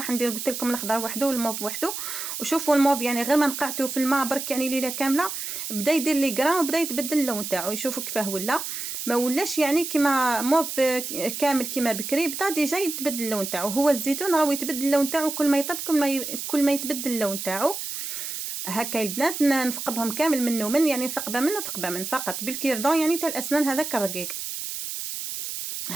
ندير قلت لكم الاخضر وحده والموف وحده. وشوفوا الموف يعني غير ما نقعته في الماء برك يعني ليله كامله بدا يدير لي غران وبدا يتبدل اللون تاعو. يشوفوا كيفاه ولا ما ولاش يعني كيما موف كامل كيما بكري، بدا ديجا يتبدل اللون تاعو. هو الزيتون راهو يتبدل اللون تاعو كل ما يطيب كل ما يتبدل اللون تاعو. هكا البنات نثقبهم كامل منه من يعني ثقبه منه ثقبه من فقط بالكيردون يعني تاع الاسنان هذاك الرقيق.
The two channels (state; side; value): noise; right; hiss, 6 dB below the sound